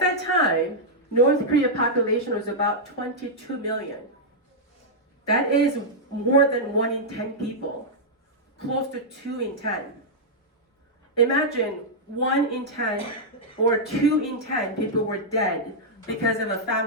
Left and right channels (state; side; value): normal; both; correlation -0.06